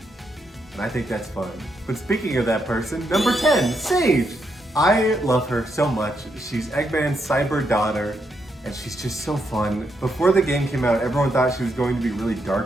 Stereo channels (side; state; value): both; normal; correlation 0.80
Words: and I think that's fun. But speaking of that person, number 10, Sage. I love her so much. She's Eggman's cyber daughter, and she's just so fun. Before the game came out, everyone thought she was going to be really